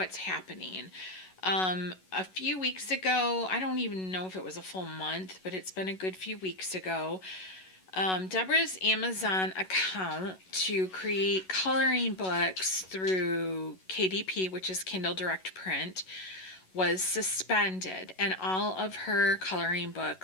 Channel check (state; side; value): late; right; 11 ms